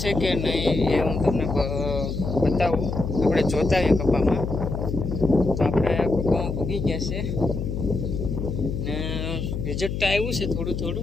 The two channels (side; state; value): left; noise; hum, 4 dB below the sound